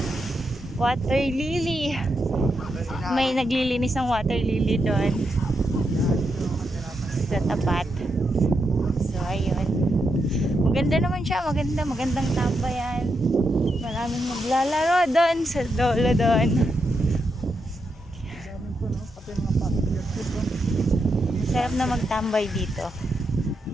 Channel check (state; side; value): normal; both; correlation 0.83